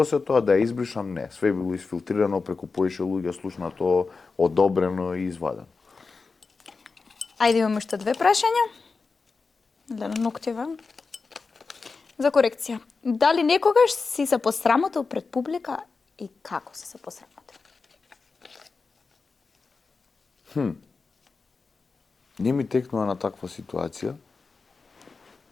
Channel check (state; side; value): quieter; right; 4.4 dB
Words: тоа да ја избришам, не. Све било изфилтрирано, преку поише луѓе слушнато, одобрено и извадено. Ајде имаме уште две прашања. Да на ноктиве. За корекција. Дали некогаш си се посрамотил пред публика и како си се посрамотил? Не ми текнува на таква ситуација.